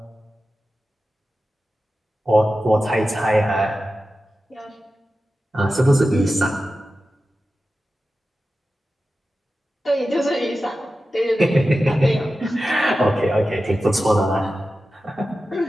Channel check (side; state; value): both; normal; correlation 0.93